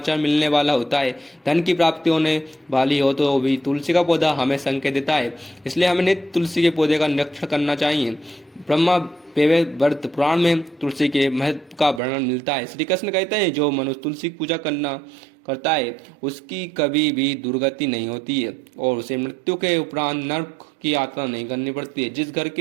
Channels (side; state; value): left; drops out; at 12.0 s